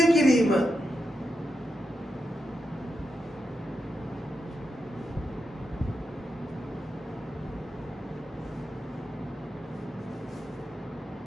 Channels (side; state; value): both; normal; correlation 0.86